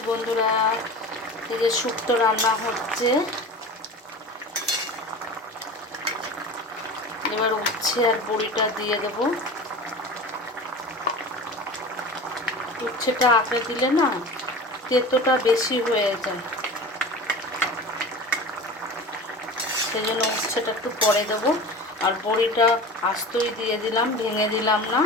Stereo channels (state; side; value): normal; both; correlation 0.34